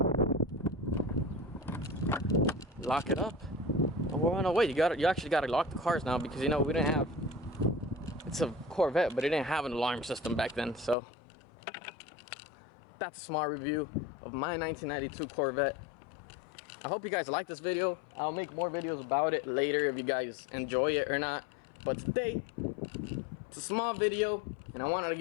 Lock it up. Oh no, wait, you actually gotta lock the cars now, because you know we didn't have, it's a Corvette, but it didn't have an alarm system back then. So that's a small review of my 1992 Corvette. I hope you guys like this video. I'll make more videos about it later if you guys enjoy it or not. But today, it's a small video, and I wanted to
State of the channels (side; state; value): right; drops out; at 11.0 s